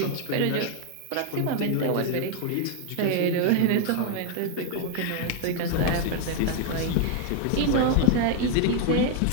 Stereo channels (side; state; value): both; different; correlation 0.01